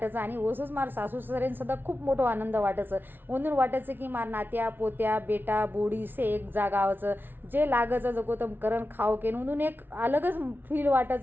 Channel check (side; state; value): left; late; 0.098 ms